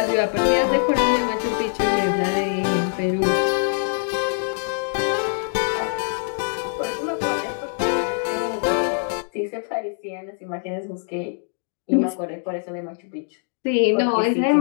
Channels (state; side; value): silent; right; 63 dB below the other